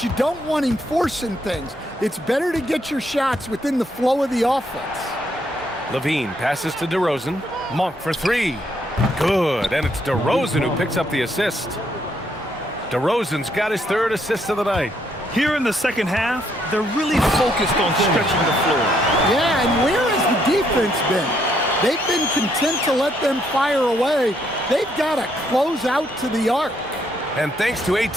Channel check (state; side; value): normal; both; correlation 0.73